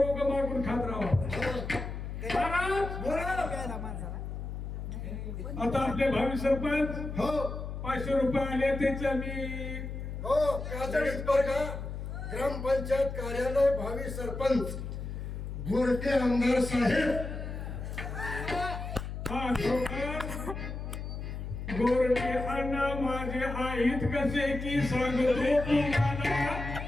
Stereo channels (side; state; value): left; noise; hum, 6 dB below the sound